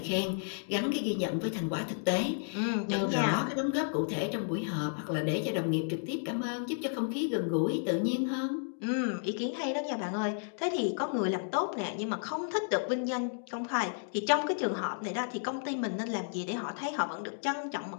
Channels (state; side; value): silent; right; digital silence